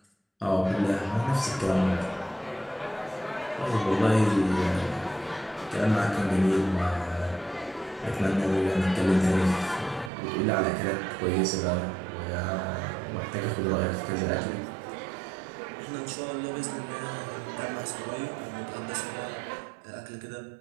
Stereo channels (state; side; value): drops out; left; at 10.1 s